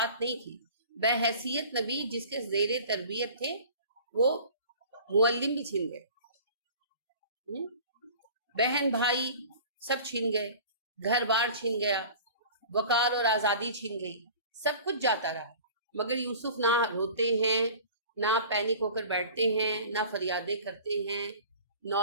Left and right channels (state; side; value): inverted; both; correlation -0.43